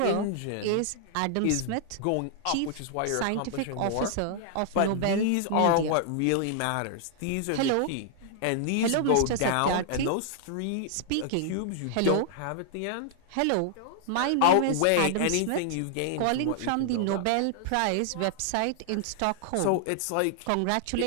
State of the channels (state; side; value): different; both; correlation -0.01